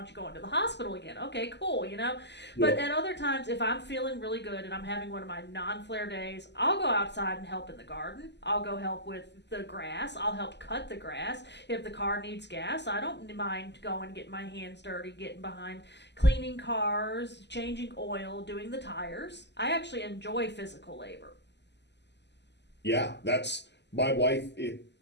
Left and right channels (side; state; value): right; late; 0.50 ms